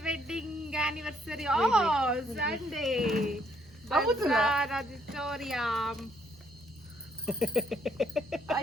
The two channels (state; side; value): normal; both; correlation 0.69